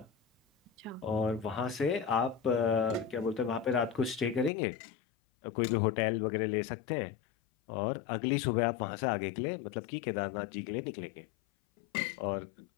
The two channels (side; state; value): right; drops out; at 4.5 s